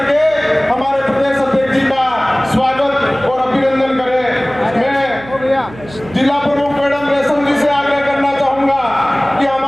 के हमारे प्रदेश अध्यक्ष जी का स्वागत और अभिनंदन करें। मैं जिला प्रमुख मैडम रेशम जी से आग्रह करना चाहूंगा कि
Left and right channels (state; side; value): noise; right; hum, 18 dB below the sound